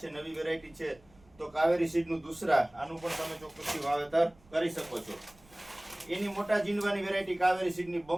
નવી વેરાયટી છે તો કાવેરી સીડનું દુસરા, આનું પણ તમે ચોક્કસથી વાવેતર કરી શકો છો. એની મોટા ઝીંડવાની વેરાયટી કાવેરી સીડની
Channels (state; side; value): noise; right; rumble, 27 dB below the sound